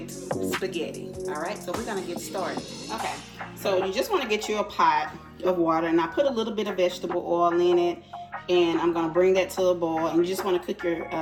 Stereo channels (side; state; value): both; identical; correlation 1.00